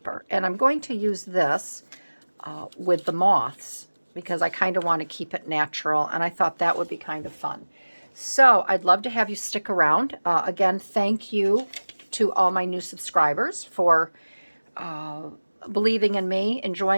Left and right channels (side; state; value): both; inverted; correlation -1.00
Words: And I'm going to use this with the moths, because I kind of want to keep it natural, and I thought that would be kind of fun. So I'd love to have you stick around. Again, thank you to all my new subscribers for believing in me,